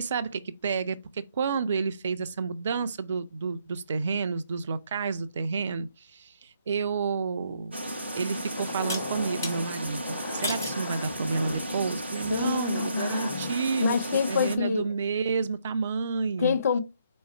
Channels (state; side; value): inverted; both; correlation -0.72